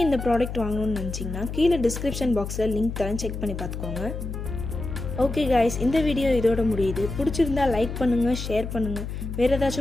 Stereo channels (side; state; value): left; noise; hum, 6 dB below the sound